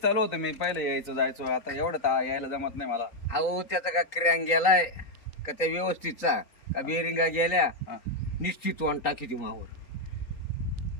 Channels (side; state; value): right; late; 3.8 ms